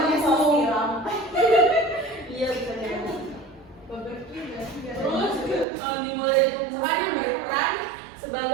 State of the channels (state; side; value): drops out; left; at 5.7 s